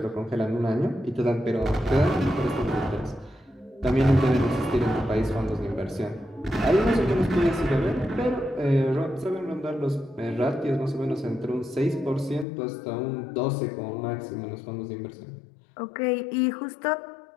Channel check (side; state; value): right; drops out; at 12.5 s